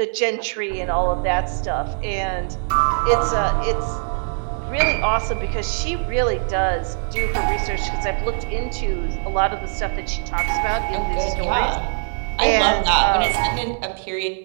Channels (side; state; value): left; silent; 64 dB below the other